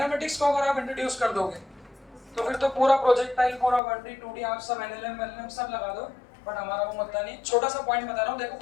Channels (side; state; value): right; drops out; at 3.8 s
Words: को अगर आप इंट्रोड्यूस कर दोगे तो फिर तो पूरा प्रोजेक्टाइल, पूरा 1D 2D आप सब एनएलएम एलएम सब लगा दो, बट हमारा वो मुद्दा नहीं। छोटा सा पॉइंट बता रहा हूँ, देखो